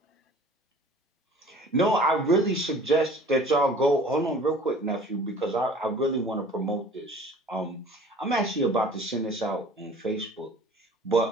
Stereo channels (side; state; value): both; normal; correlation 0.47